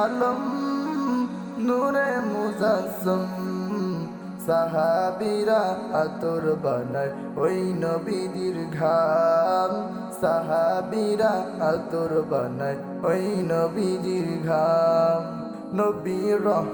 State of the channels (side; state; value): both; identical; correlation 1.00